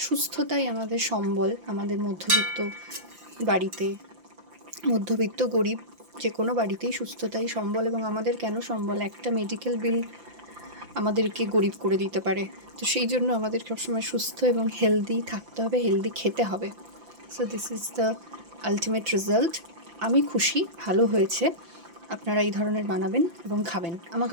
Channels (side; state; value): left; late; 5.8 ms